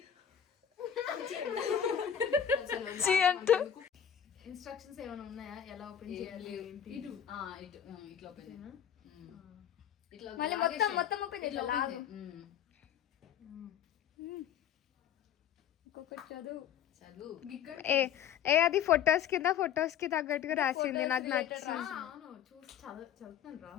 ఇన్స్ట్రక్షన్స్ ఏమైనా ఉన్నాయా? ఎలా ఓపెన్ చేయాలి? ఇటు ఇట్లా ఓపెన్ చేయనా? ఇట్లా మళ్ళీ మొత్తం ఓపెన్ ఇట్లా ఓపెన్ ఇంకొకటి చదువు. ఏ అది ఫొటోస్ కి తగ్గట్టుగా రాసింది. నాకు నచ్చింది. చూసి చదువుతున్నాను రా.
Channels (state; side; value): quieter; right; 9.2 dB